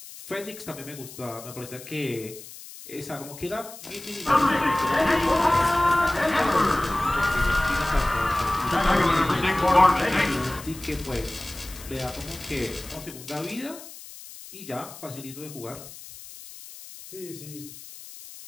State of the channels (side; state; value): left; noise; hiss, 16 dB below the sound